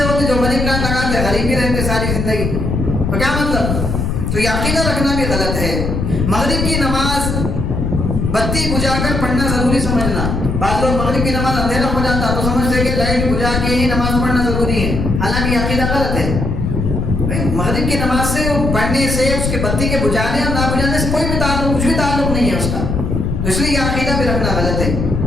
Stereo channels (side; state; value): left; noise; rumble, 1 dB below the sound